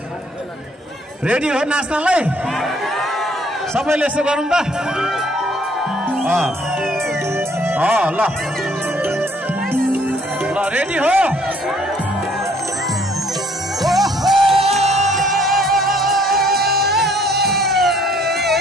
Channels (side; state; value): both; normal; correlation 0.62